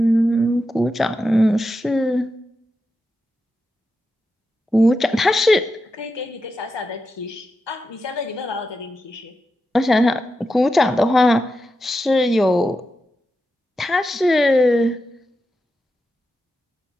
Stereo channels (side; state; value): both; normal; correlation 0.89